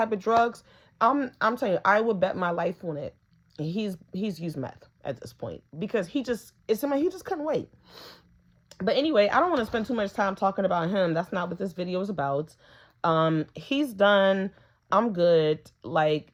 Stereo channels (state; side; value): identical; both; correlation 1.00